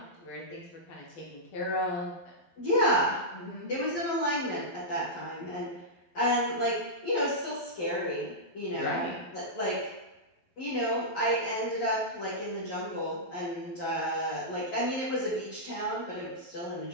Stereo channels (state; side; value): late; right; 12 ms